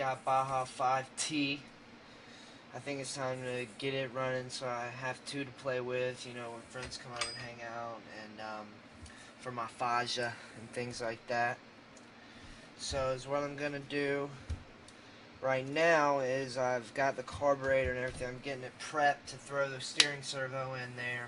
Baja 5T. I think it's time to get it running, so I have two to play with, you know, when friends come over and hang out, and for my Faja and things like that. So is what I'm gonna do right now is I've got the carburetor and everything. I'm getting it prepped to throw the steering servo in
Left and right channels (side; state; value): both; identical; correlation 1.00